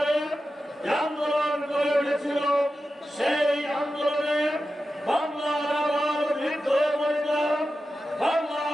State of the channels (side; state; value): both; normal; correlation 0.92